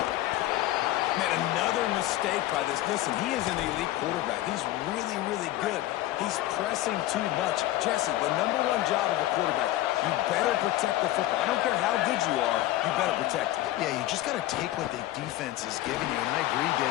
Man, another mistake by this. Listen, he is an elite quarterback. He's really, really good. He's pressing too much. Jesse, the #1 job of a quarterback, you better protect the football. I don't care how good you are, you better protect it. Yeah, you just got to take what the defense is giving you. And I agree,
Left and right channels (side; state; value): right; quieter; 15.5 dB